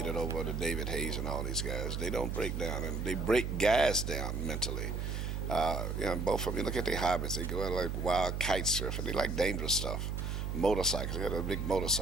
over the David Hayes and all these guys. They don't break down, and they break guys down mentally. Both of them, look at their hobbies. They go out like wild kite surfing. They like dangerous stuff. Motorcycles, they got a big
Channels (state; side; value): noise; right; hum, 2 dB below the sound